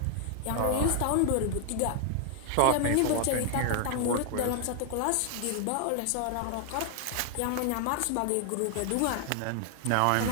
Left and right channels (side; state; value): both; different; correlation 0.00